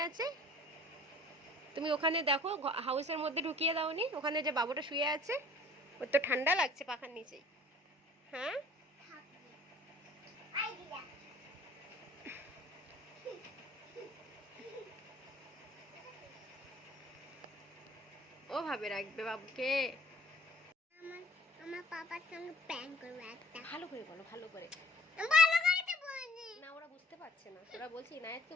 আছে, তুমি ওখানে দেখো হাউসের মধ্যে ঢুকিয়ে দাওনি? ওখানে যে বাবুটা শুয়ে আছে, ওর তো ঠান্ডা লাগছে পাখার নিচেই। হ্যাঁ ভাবে রাখবে বাবুকে? আমার আমার পাপার সঙ্গে প্র্যাঙ্ক করব একটা। ভালো করে বলো, ভালো করে। ভালো করে তো বলছি। না ওরা বুঝতে পারছে না, ওরা বলছে ইনায়েতকে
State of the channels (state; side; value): normal; both; correlation 0.51